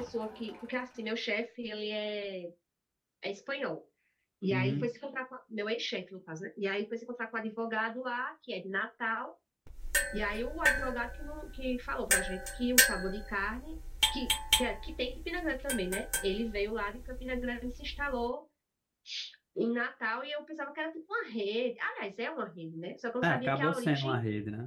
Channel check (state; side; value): identical; both; correlation 1.00